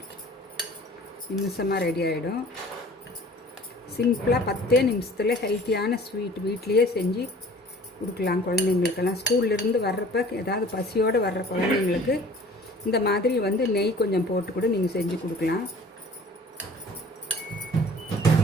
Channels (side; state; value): both; normal; correlation 0.48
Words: நிமிஷமாக ரெடி ஆகிடும். சிம்பிளாக 10 நிமிஷத்தில் ஹெல்த்தியான ஸ்வீட் வீட்லேயே செஞ்சு கொடுக்கலாம் குழந்தைங்களுக்கெல்லாம். ஸ்கூல்லேருந்து வர்றப்ப ஏதாவது பசியோடு வர்ற குழந்தைங்களுக்கு இந்த மாதிரி வந்து நெய் கொஞ்சம் போட்டு கூட நீங்கள் செஞ்சு கொடுக்கலாம்.